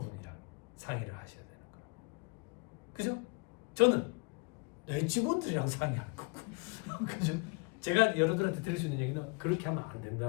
상의를 하셔야 되는 거예요. 그죠? 저는 내 직원들이랑 상의할 거고. 그죠? 제가 여러분들한테 드릴 수 있는 얘기는 그렇게 하면 안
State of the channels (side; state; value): right; quieter; 30.7 dB